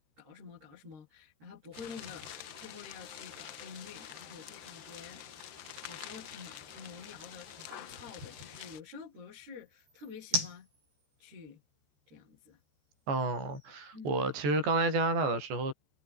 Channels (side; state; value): left; late; 14 ms